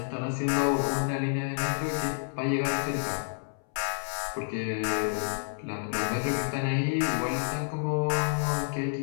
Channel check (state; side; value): silent; right; 58 dB below the other